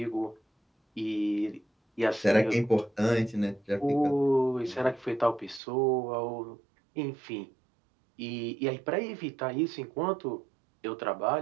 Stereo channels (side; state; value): left; drops out; at 5.6 s